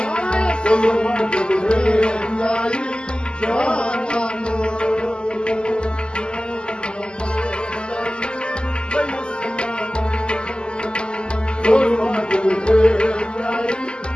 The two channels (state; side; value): late; right; 0.048 ms